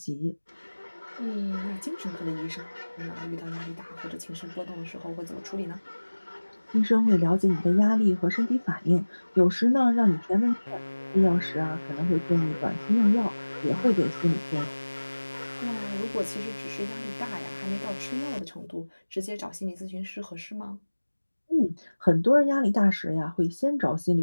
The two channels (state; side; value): inverted; both; correlation -1.00